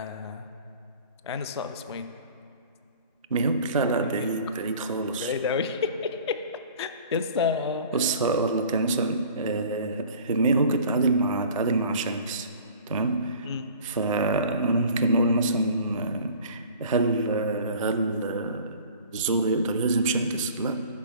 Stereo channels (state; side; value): inverted; both; correlation -0.47